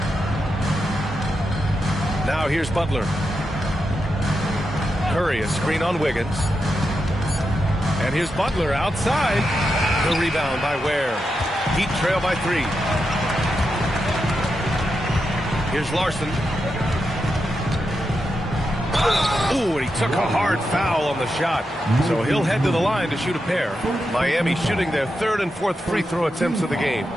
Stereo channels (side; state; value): both; normal; correlation 0.87